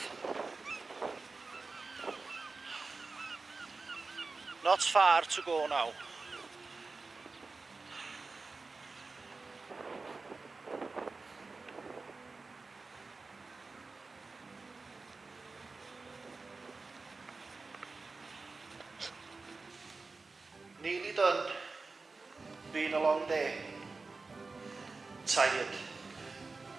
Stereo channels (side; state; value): left; quieter; 3.9 dB